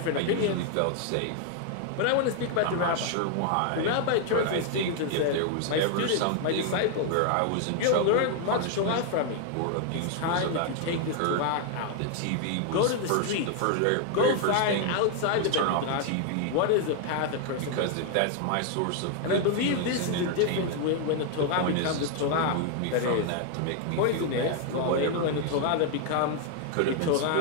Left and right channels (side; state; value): both; different; correlation 0.00